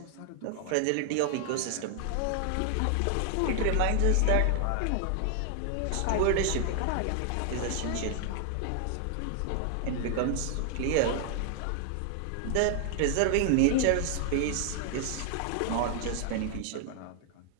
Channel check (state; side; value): different; both; correlation 0.00